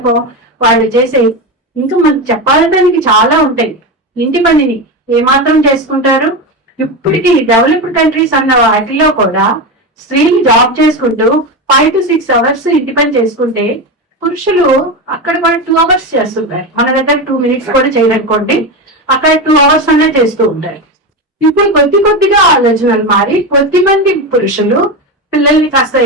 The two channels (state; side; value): normal; both; correlation 0.17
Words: వాళ్ళు చేసే ఇంకా మనకు చెప్పాలడానికి చాలా ఉంటాయి. ఇంటి పనిని ఏమాత్రం చేసుకుంటారు? ఇప్పటికీ డెవలప్డ్ కంట్రీస్ అన్న వాటిలో కూడా స్త్రీలు జాబ్ చేసుకుంటూ 5 to 6 hours ఇంటి పని చేసుకుంటే పురుషులు అక్కడ కూడా 2 hours చేస్తుంటారు. మన దగ్గర 2 minutes కూడా చేయరనుకోండి, అక్కడ 2 hours అనే చేస్తూ ఉంటారు. ఇప్పుడు కొద్దిగా ఆలోచనలు మారి కొద్దిమంది పురుషులు పిల్లల్ని కాస్త